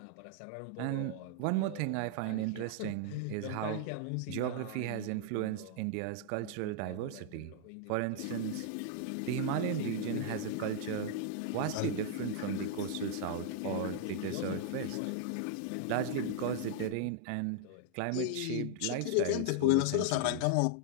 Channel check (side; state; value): both; different; correlation 0.00